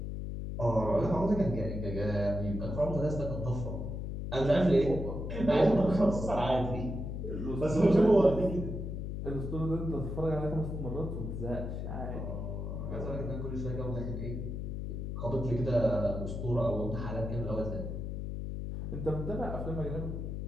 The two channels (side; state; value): left; noise; hum, 4 dB below the sound